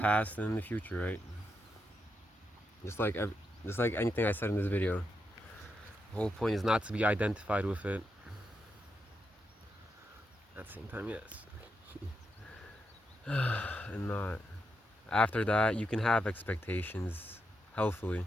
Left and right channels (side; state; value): both; normal; correlation 0.84